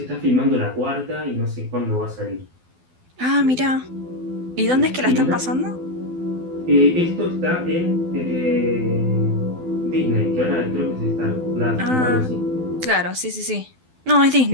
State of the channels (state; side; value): late; left; 12 ms